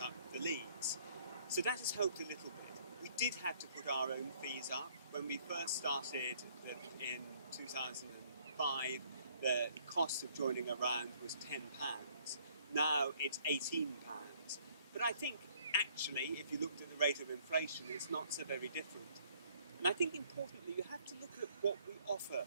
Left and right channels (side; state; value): both; inverted; correlation -0.62